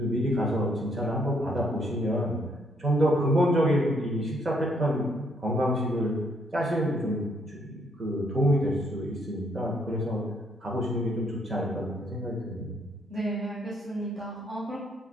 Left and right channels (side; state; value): both; normal; correlation 0.70